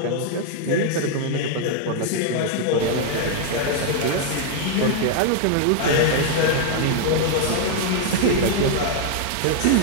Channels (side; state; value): both; different; correlation 0.00